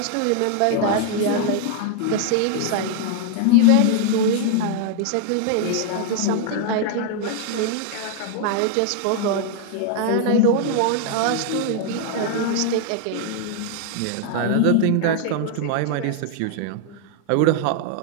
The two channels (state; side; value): different; both; correlation 0.00